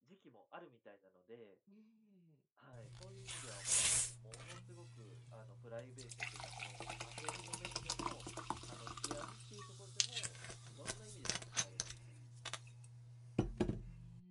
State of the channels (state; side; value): identical; both; correlation 1.00